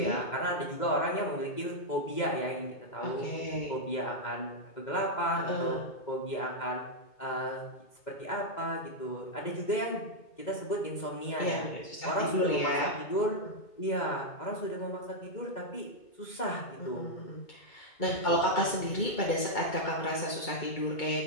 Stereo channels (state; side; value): late; right; 2.2 ms